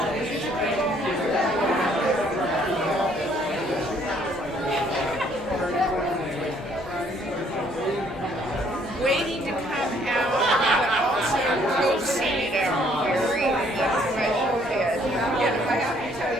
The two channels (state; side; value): normal; both; correlation 0.64